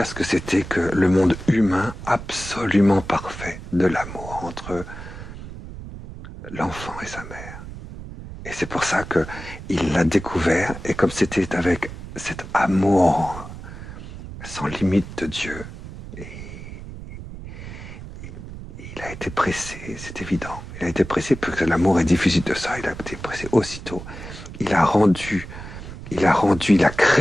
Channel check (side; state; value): right; noise; rumble, 12 dB below the sound